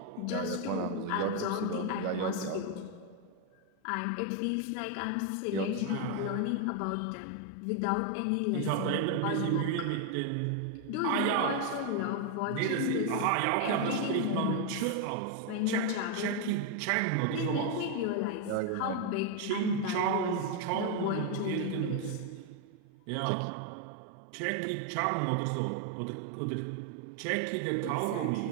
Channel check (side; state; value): both; different; correlation 0.01